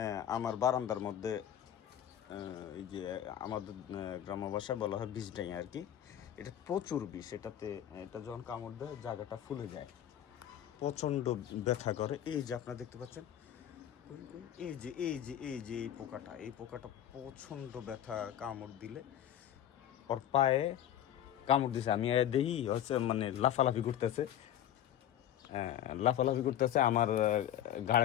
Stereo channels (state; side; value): quieter; right; 11.0 dB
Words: আমার বারান্দার মধ্যে এই যে আমাদের গ্রাম্য ভাষায় বলা হয় 20 টাকা আর কি এটা প্রচুর বিষ এটা যখন কামড় দেয় জায়গাটা ফুলে যায় প্রচণ্ড ব্যথা করে এই যে আপনারা দেখতে পাচ্ছেন এই পোকাটা প্রচণ্ড ব্যথা কামড় দিলে ওর পায়ে কামড় দিছে আমি দেখি হচ্ছে মানে লাফালাফি করতেছে আমার